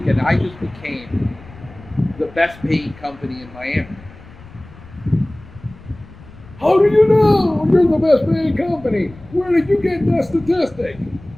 I just became the best paying company in Miami. How do you know you're the best paying company? Where did you get that statistic?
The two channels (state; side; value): noise; left; rumble, 20 dB below the sound